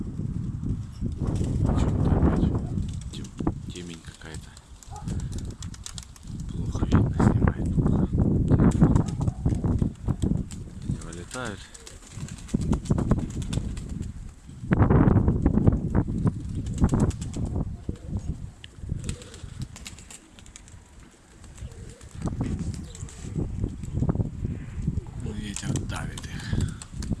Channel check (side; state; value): both; identical; correlation 1.00